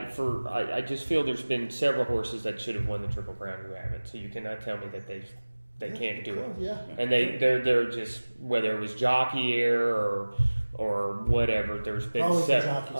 just feel there's been several horses that should have won the Triple Crown who haven't. So you cannot tell me that they can't do it. Yeah. And they're just, whether it was jockey error or whatever. There's been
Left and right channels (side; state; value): both; inverted; correlation -1.00